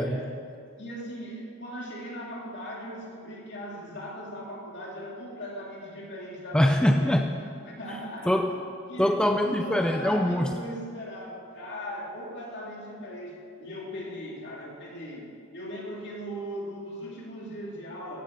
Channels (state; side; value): normal; both; correlation 0.80